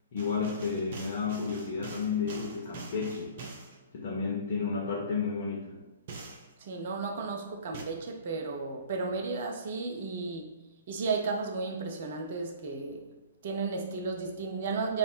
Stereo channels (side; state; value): both; inverted; correlation -0.43